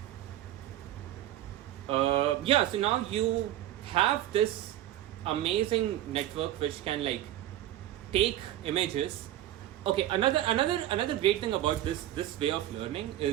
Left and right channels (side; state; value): left; quieter; 13.1 dB